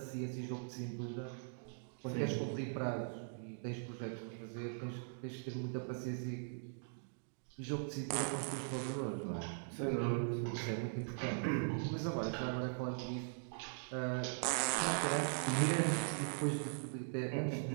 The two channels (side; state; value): left; silent; digital silence